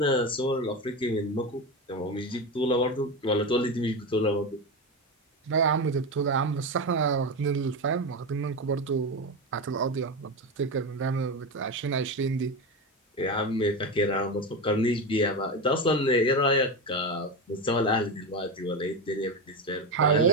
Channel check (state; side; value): normal; both; correlation 0.17